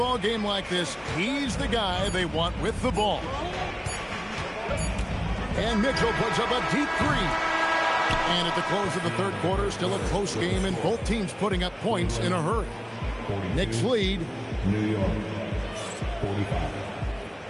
game like this, he's the guy they want with the ball. And Mitchell puts up a deep 3. And at the close of the third quarter, still a close game, and both teams putting up points in a hurry. Knicks lead. New York, 45.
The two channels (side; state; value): both; identical; correlation 1.00